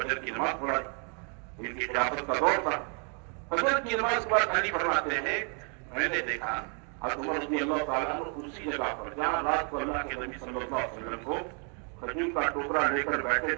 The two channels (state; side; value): quieter; left; 37.5 dB